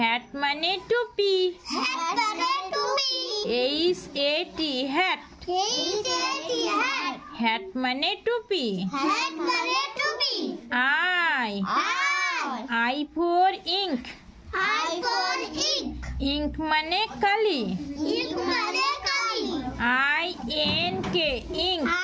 মানে টুপি। H A T hat. Hat মানে টুপি। I I for ink. Ink মানে কালি। I N K ink.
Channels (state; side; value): identical; both; correlation 1.00